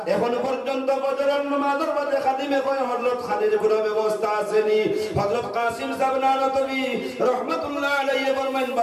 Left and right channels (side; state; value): both; identical; correlation 1.00